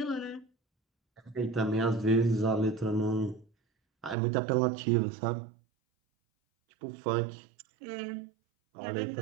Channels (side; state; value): left; drops out; at 4.2 s